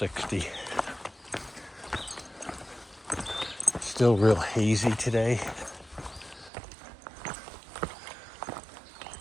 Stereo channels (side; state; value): left; drops out; at 6.5 s